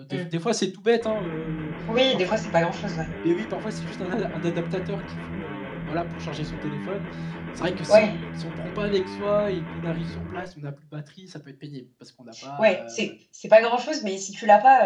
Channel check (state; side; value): identical; both; correlation 1.00